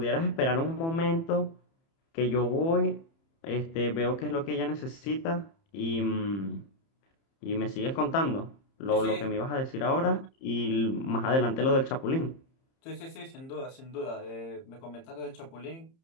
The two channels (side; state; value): right; late; 30 ms